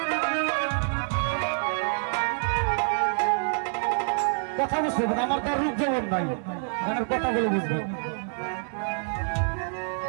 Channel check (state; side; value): silent; left; 60 dB below the other